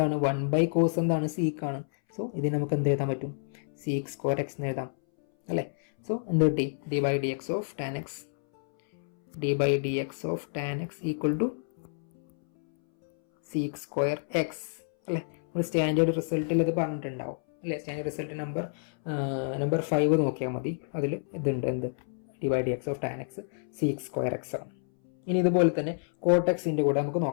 1 ബൈ കോസ് എന്താണ്, സീക്ക് ആണ്. സോ ഇതിന് നമുക്ക് എന്ത് എഴുതാൻ പറ്റും, സീക്ക് സ്ക്വയർ എക്സ് എന്ന് എഴുതാം അല്ലേ? സോ എന്ത് കിട്ടി? D by D X of tan x equal to sec square x അല്ലേ? നമ്മൾ സ്റ്റാൻഡേർഡ് റിസൾട്ടിൽ ഇത് പറഞ്ഞിട്ടുണ്ടാവും അല്ലേ? സ്റ്റാൻഡേർഡ് റിസൾട്ട് നമ്പർ 5 നോക്കിയാൽ മതി. അതിൽ ഇതുണ്ട്, എന്ത്? D by D X of tan x sec square x ആണ്. ഇനി ഇതുപോലെ തന്നെ കോട്ടെക്സിൻ്റെ കൂടെ നമുക്ക്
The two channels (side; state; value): right; silent; 59 dB below the other